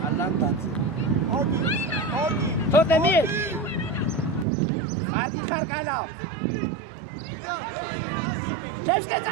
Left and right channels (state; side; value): drops out; left; at 4.5 s